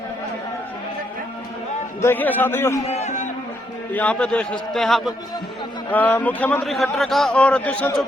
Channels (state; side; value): normal; both; correlation 0.75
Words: देखिए साथियों, यहाँ पे देख सकते हैं आप मुख्यमंत्री खट्टर का और दुष्यंत